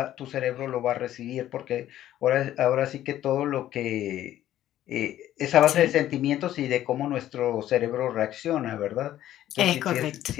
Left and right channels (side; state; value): right; quieter; 12.7 dB